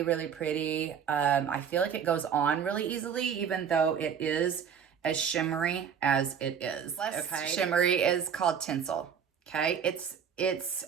really pretty. I feel like it goes on really easily, even though it is as shimmery as it is. Okay. Shimmery is called Tinsel. Okay. It's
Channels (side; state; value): left; quieter; 7.6 dB